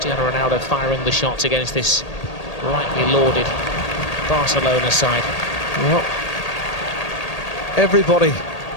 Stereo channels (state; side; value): late; right; 1.8 ms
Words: Ronaldo firing the shots against this rightly lauded Barcelona side. Well, everybody